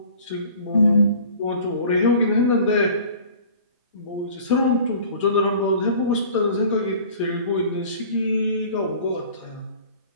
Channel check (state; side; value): inverted; both; correlation -0.46